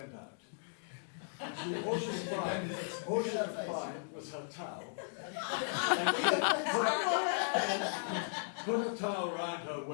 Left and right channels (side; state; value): right; silent; digital silence